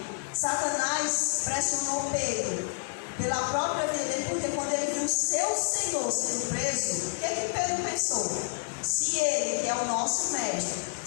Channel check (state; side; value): silent; right; 59 dB below the other